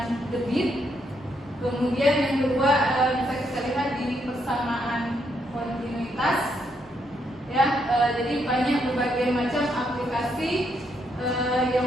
debit. Kemudian yang kedua bisa kita lihat di persamaan kontinuitas. Ya, jadi banyak berbagai macam aplikasi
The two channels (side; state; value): both; normal; correlation 0.76